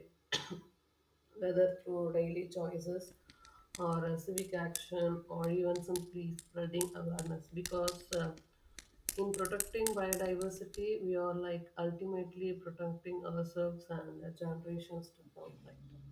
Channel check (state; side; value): identical; both; correlation 1.00